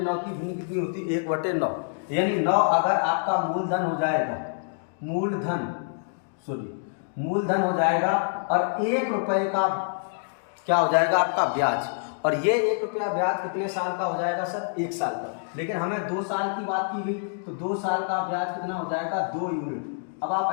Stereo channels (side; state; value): right; silent; digital silence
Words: की भिन्न कितनी होती है? 1/9। यानी 9 अगर आपका मूलधन हो जाएगा, मूलधन हो जाएगा, और 1 रुपये का क्या हो जाएगा? आपका ब्याज। और ये 1 रुपया ब्याज कितने साल का हो जाएगा सर? 1 साल का। लेकिन हमें 2 साल की बात की गई, तो 2 साल का ब्याज कितना हो जाएगा? 2 यूनिट। अब आप